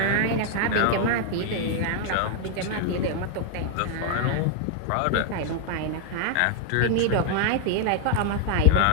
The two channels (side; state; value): both; different; correlation 0.00